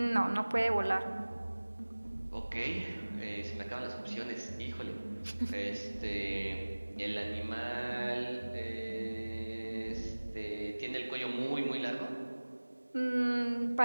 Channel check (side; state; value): both; inverted; correlation -1.00